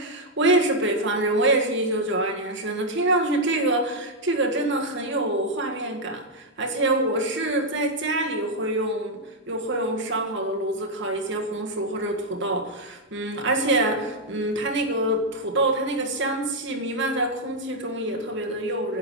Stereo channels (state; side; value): normal; both; correlation -0.01